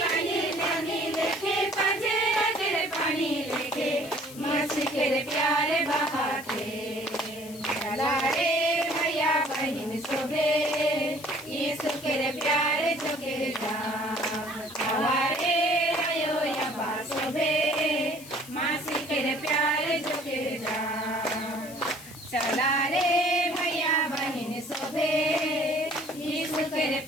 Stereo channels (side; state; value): left; noise; hiss, 17 dB below the sound